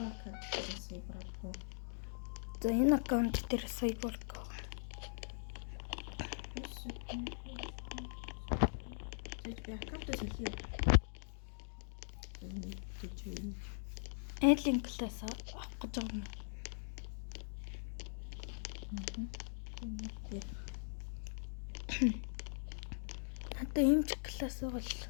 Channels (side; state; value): right; silent; digital silence